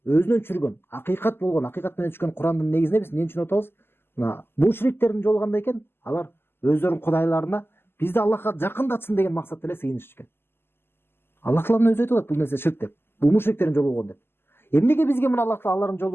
өзүнөн түшүргөн, акыйкат болгон, акыйкат менен түшкөн Курандын негизинде биз эмне түшүнүп атабыз? Мына мушриктердин жолу кандай экен? Алар өздөрүнүн кудайларына бизди Аллахка жакындатсын деген максатта эле сыйынышчу экен. Аллах Таала өзү айтып атат, бул нерсе ширк деп. Бул мушриктердин жолу болгон деп. Эмнеге бизге мына Аллах Таала алардын жолу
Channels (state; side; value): late; right; 0.11 ms